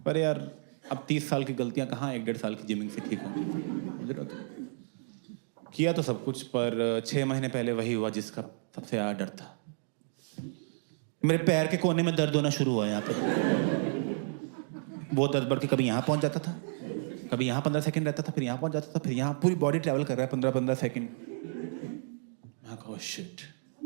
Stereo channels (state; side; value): silent; left; digital silence